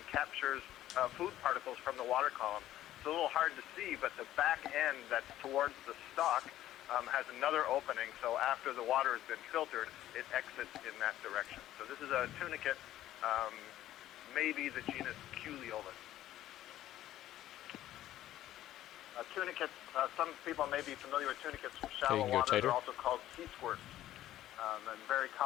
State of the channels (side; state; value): right; quieter; 13.5 dB